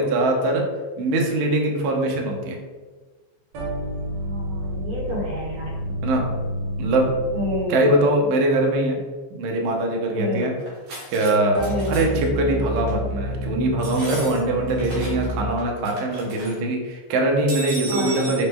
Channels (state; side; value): late; left; 15 ms